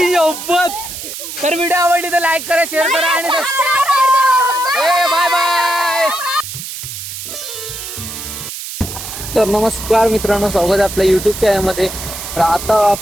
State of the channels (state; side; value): noise; right; hiss, 9 dB below the sound